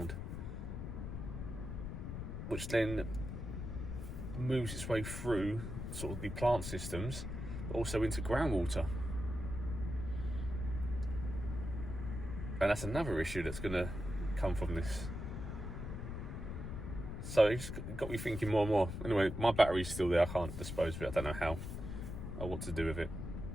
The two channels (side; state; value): left; noise; rumble, 6 dB below the sound